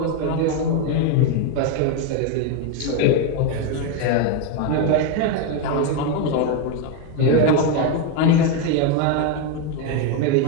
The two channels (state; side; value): different; both; correlation 0.02